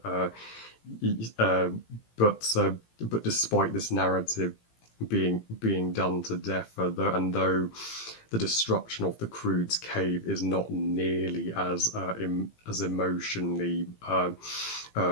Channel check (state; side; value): late; right; 18 ms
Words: Uh, but despite this narrative being done to death, though the destruction of the Croods cave is not nearly as emotionally